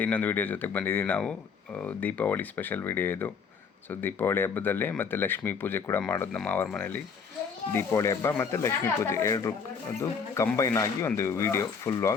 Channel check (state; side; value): quieter; right; 6.0 dB